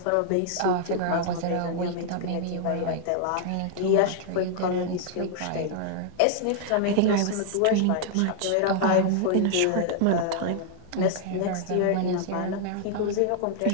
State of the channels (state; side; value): different; both; correlation -0.01